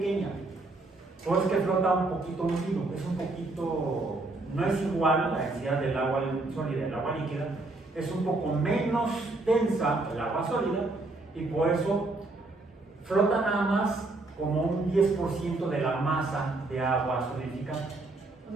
Por eso es que flota un poquito hundido, no es igual la densidad del agua sólida y del agua líquida, es un poco menos densa el agua sólida y por eso flota nada más como un 10% de la masa de agua solidificada. O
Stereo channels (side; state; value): left; quieter; 3.1 dB